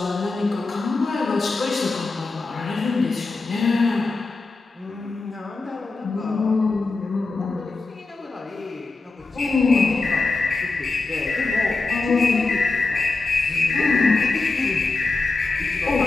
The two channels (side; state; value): right; quieter; 3.7 dB